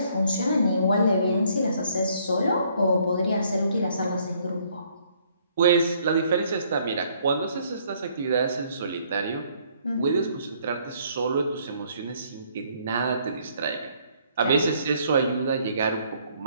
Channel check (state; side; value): inverted; both; correlation -0.65